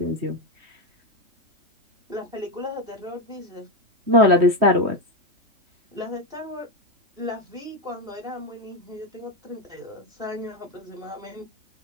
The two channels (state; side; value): late; left; 3.1 ms